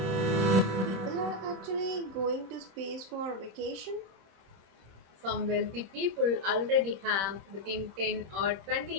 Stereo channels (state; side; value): late; left; 26 ms